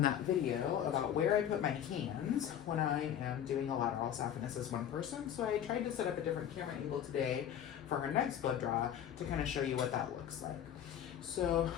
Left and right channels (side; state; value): right; quieter; 9.9 dB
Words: that video about where I put my hands when I am doing a lateral saphenous as one person. So I tried to set up a different camera angle today for her next blood draw to kind of show you what that looks like. So